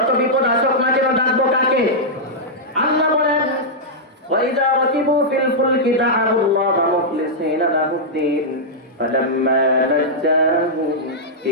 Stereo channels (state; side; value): normal; both; correlation -0.09